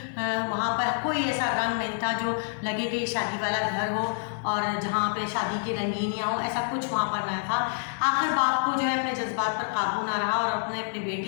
वहाँ पर कोई ऐसा रंग नहीं था जो लगे कि शादी वाला घर हो और जहाँ पे शादी की रंगीनियाँ हो, ऐसा कुछ वहाँ पर नहीं था। आखिर बाप को जो है अपने जज्बात पर काबू ना रहा, और अपनी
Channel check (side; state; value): right; silent; 60 dB below the other